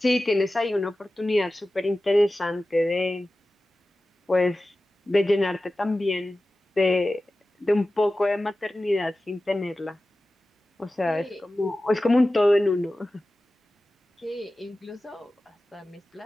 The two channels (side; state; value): both; normal; correlation 0.95